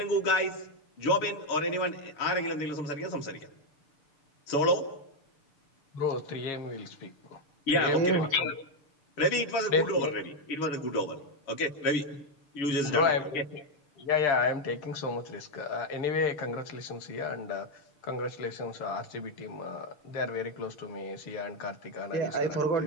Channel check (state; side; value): late; right; 6.7 ms